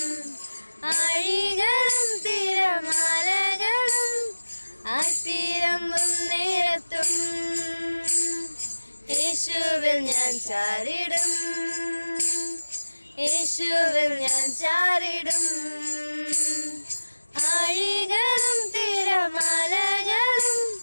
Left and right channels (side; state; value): both; inverted; correlation -1.00